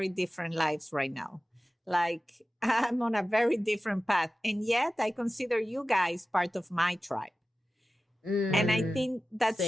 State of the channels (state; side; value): normal; both; correlation 0.95